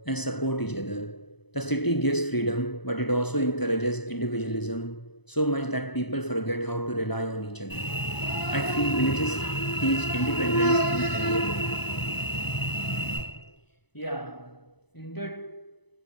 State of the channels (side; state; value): right; late; 0.99 ms